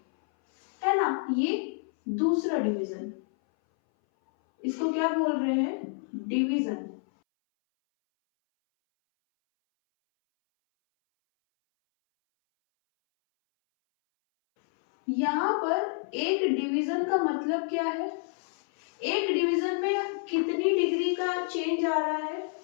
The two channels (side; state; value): right; silent; 59 dB below the other